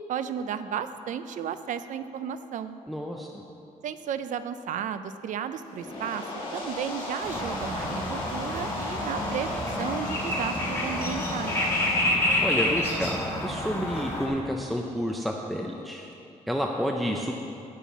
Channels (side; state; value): both; normal; correlation 0.35